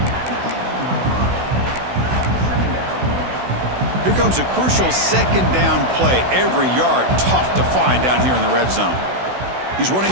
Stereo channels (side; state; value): left; late; 16 ms